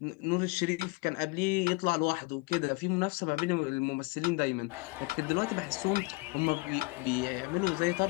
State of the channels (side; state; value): right; quieter; 25.2 dB